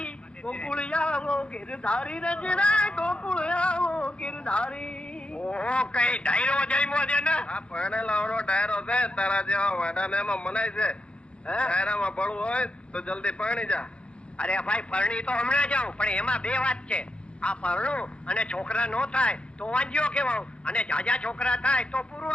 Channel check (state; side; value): late; right; 0.058 ms